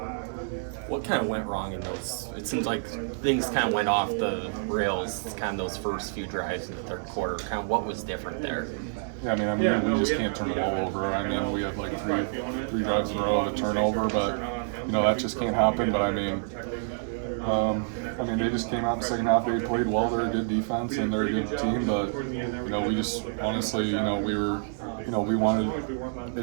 What kind of went wrong in those? It seems like things kind of went off the rails, kind of those first few drives in the third quarter. Kind of what was different there? Yeah, I mean, we just can't turn the ball over. I mean, we have like three drives in a row of a turnover, but that just can't happen. But they just came out in the second half. They played well. They're a good defense and they're a good team. But we just honestly, we wanted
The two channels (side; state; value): left; silent; digital silence